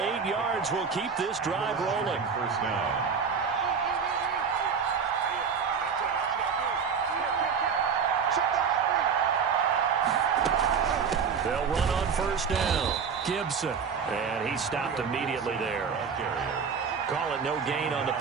yards will keep this drive rolling. First down. They'll run on first down. Gibson. And he stopped immediately there. Call it no gain on the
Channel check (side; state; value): left; quieter; 6.2 dB